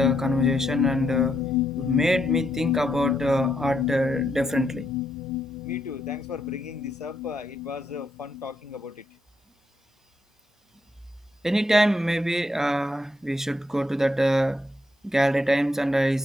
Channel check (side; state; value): both; normal; correlation 0.78